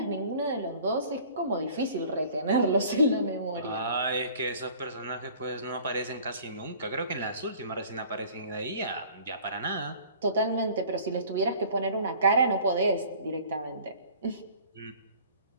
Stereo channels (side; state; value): both; inverted; correlation -0.49